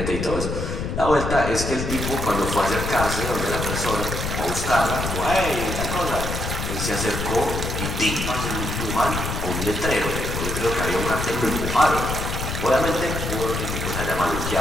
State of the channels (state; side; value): noise; left; rumble, 4 dB below the sound